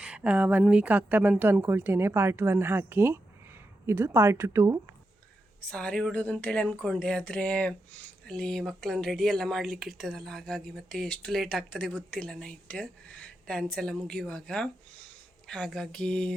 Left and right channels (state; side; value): normal; both; correlation 0.87